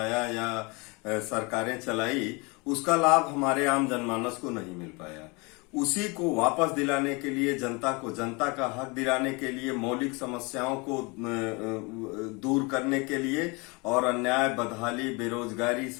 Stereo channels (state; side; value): quieter; right; 28.1 dB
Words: या सरकारें चलाई, उसका लाभ हमारे आम जनमानस को नहीं मिल पाया। उसी को वापस दिलाने के लिए, जनता को जनता का हक दिलाने के लिए, मौलिक समस्याओं को दूर करने के लिए और अन्याय, बदहाली, बेरोजगारी,